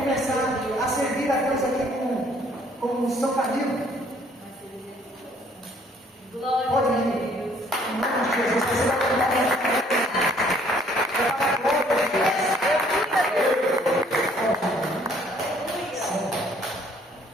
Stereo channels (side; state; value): both; normal; correlation 0.61